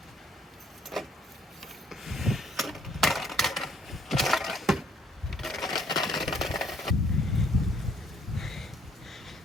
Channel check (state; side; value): normal; both; correlation 0.64